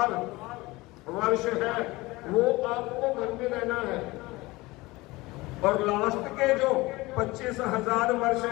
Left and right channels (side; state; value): right; quieter; 21.2 dB